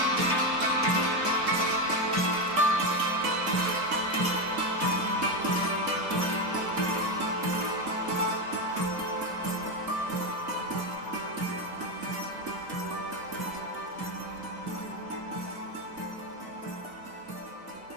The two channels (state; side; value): late; left; 4.9 ms